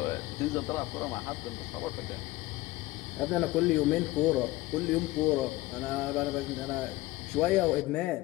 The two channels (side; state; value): right; quieter; 18.7 dB